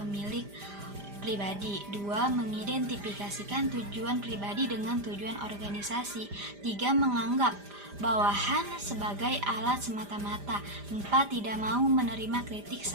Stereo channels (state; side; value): late; left; 5.0 ms